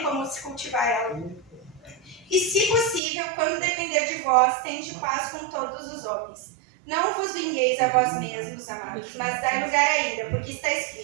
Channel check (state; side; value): drops out; left; at 3.0 s